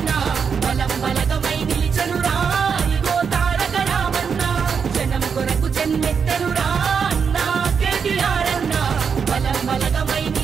బలం బలగమై నిలిచనురా ఇగో తారక రామన్న జనం కొరకు జన్మెత్తనురా అన్నా కేటీఆర్ అన్నా బలం బలగమై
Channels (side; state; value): left; quieter; 6.3 dB